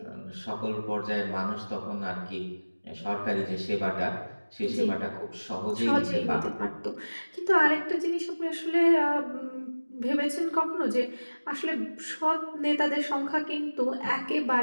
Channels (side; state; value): both; inverted; correlation -1.00